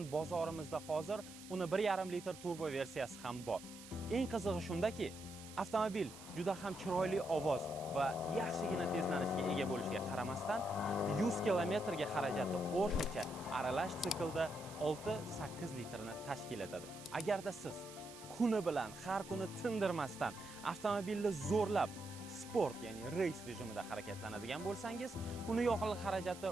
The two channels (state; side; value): noise; right; hiss, 16 dB below the sound